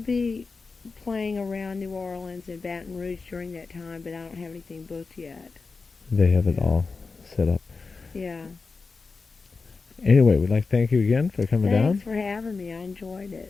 playing around New Orleans and Baton Rouge during that time, but I don't have anything booked yet. They have it all set up. Yeah. Anyway, we'd like to thank you again for coming down. Thanks for having me. I enjoyed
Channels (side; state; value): right; quieter; 4.4 dB